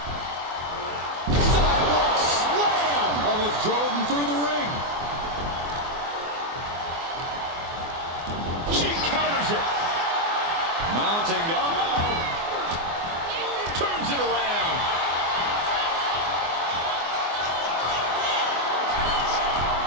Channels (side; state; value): left; late; 24 ms